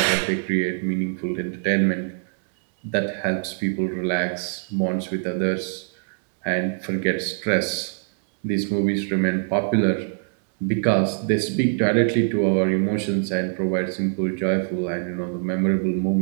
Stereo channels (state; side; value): silent; left; digital silence